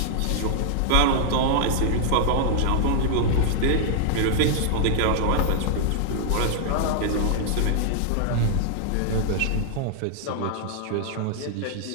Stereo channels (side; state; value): both; different; correlation -0.01